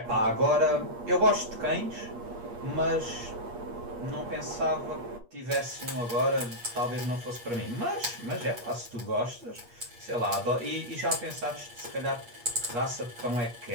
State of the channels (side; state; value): left; late; 8.4 ms